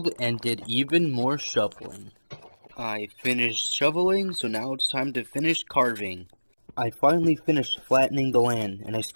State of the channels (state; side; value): inverted; both; correlation -1.00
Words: and did even more shoveling. I finished shoveling, so now it's time to finish carving. I finally finished flattening the land, and I